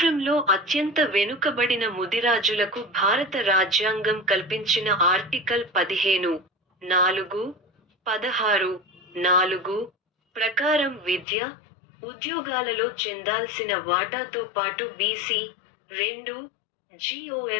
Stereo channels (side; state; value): right; drops out; at 11.2 s